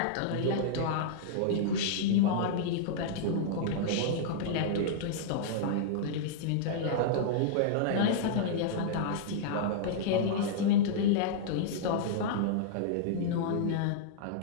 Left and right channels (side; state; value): both; different; correlation -0.02